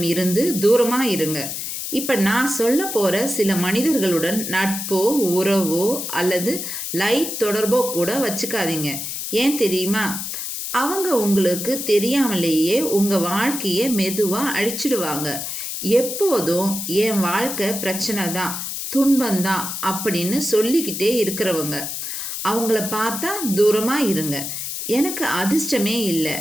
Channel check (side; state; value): left; noise; hiss, 5 dB below the sound